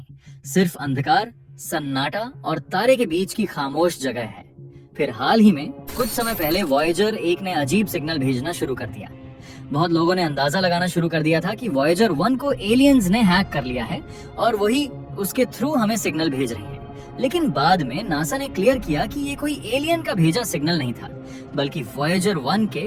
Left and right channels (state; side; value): identical; both; correlation 1.00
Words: सिर्फ अंधकार, सन्नाटा और तारे के बीच की खामोश जगह है। फिर हाल ही में कुछ समय पहले वॉयेजर 1 ने अजीब सिग्नल भेजना शुरू कर दिया। बहुत लोगों ने अंदाजा लगाना शुरू कर दिया था कि वॉयेजर 1 को एलियंस ने हैक कर लिया है और वही उसके थ्रू हमें सिग्नल भेज रहे हैं। लेकिन बाद में नासा ने क्लियर किया कि ये कोई एलियन का भेजा सिग्नल नहीं था, बल्कि वॉयेजर 1